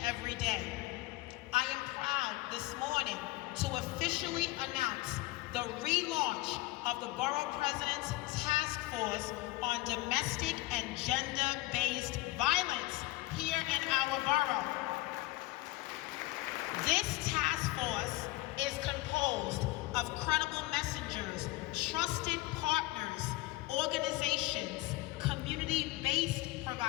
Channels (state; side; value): quieter; right; 19.5 dB